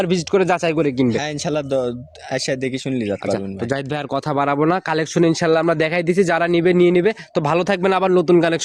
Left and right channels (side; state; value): both; identical; correlation 1.00